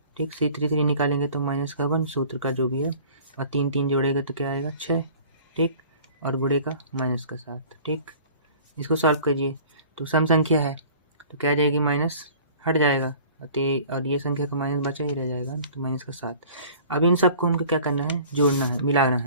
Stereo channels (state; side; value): inverted; both; correlation -0.47